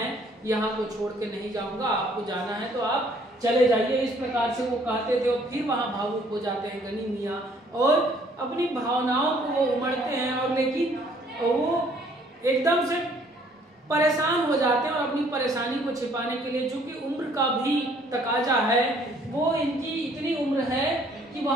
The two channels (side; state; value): both; normal; correlation 0.61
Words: यहाँ को छोड़ के नहीं जाऊंगा, आपको जाना है तो आप चले जाइए। इस प्रकार से वो कहते थे और फिर वहां भावुक हो जाते हैं गनी मियाँ और अपनी भावनाओं को वो उमड़ते हैं और लेकिन वो एकदम से परेशान हो जाते हैं और अपनी परेशानी को छिपाने के लिए, चूंकि उम्र का भी तकाजा है, वो इनकी इतनी उम्र है कि